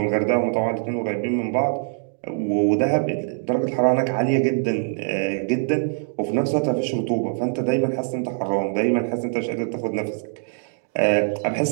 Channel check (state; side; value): silent; left; digital silence